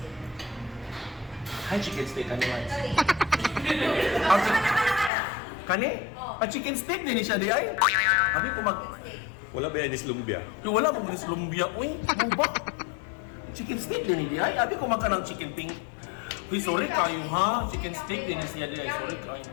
Hi, chicken steak kani man. Sorry. Kani? A chicken steak din siya di ay. Abi ko mag Wala ba yan is lumbia? Yung wala mo gulis lumbia. Uy, ano ba? Chicken steak din di ay. Abi ko magka ng chicken pink. Uy, sorry kayo ha. Chicken steak din siya di ay. Sorry kayo.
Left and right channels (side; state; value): right; drops out; at 5.1 s